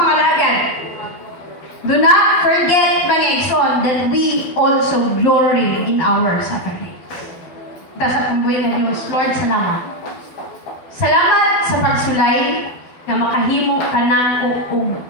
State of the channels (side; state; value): right; late; 12 ms